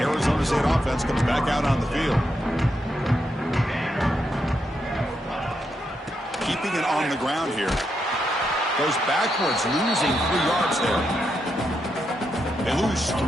Arizona State offense comes back out on the field. Keeping it on the ground here. Goes backwards, losing 3 yards there. They lose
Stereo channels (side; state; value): both; normal; correlation 0.82